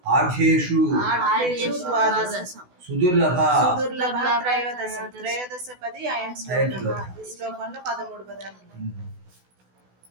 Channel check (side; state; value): left; late; 16 ms